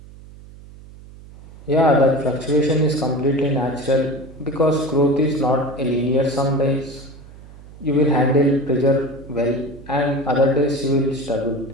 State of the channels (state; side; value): noise; right; hum, 19 dB below the sound